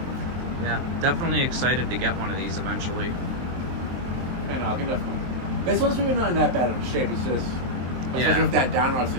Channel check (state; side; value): late; left; 23 ms